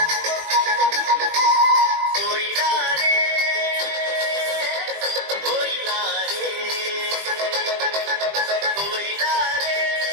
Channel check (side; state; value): left; late; 20 ms